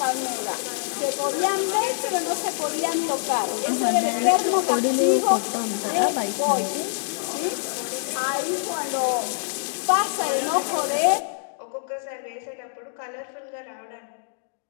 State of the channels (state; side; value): silent; right; digital silence